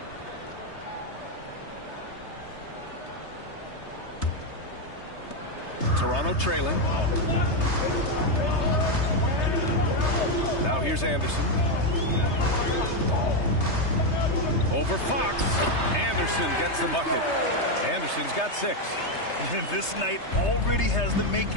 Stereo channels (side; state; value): right; late; 3.3 ms